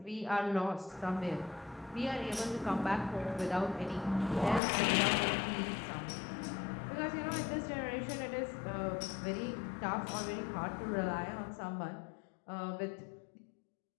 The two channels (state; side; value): drops out; right; at 4.6 s